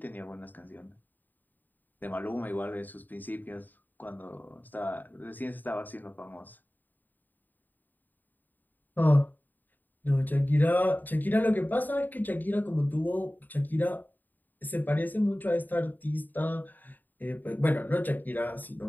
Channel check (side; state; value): right; late; 0.088 ms